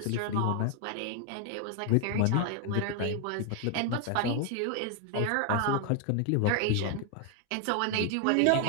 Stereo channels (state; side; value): different; both; correlation 0.00